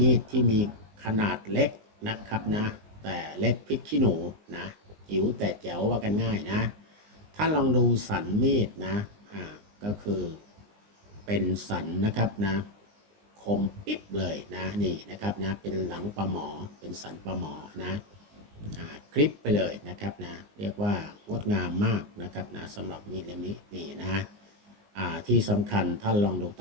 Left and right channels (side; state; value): left; late; 19 ms